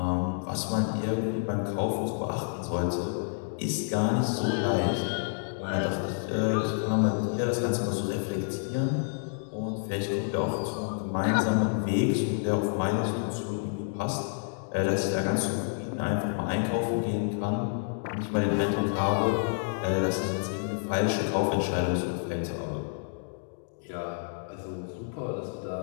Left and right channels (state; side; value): silent; right; digital silence